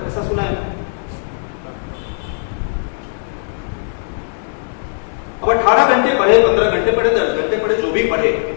ऐसा सुना है? अब 18 घंटे पढ़े, 15 घंटे पढ़े, 10 घंटे पढ़े, जो भी पढ़े,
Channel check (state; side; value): silent; right; 67 dB below the other